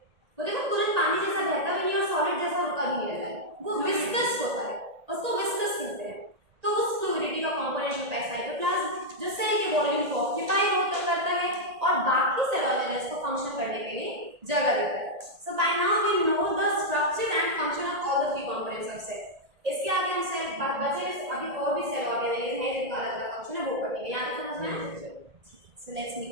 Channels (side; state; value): left; late; 1.8 ms